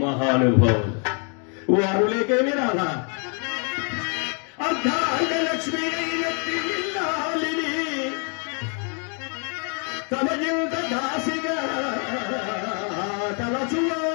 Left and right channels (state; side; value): quieter; right; 39.9 dB